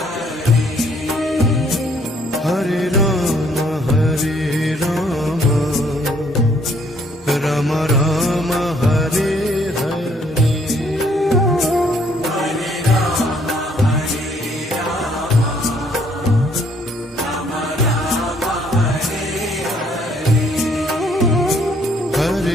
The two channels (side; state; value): both; normal; correlation 0.65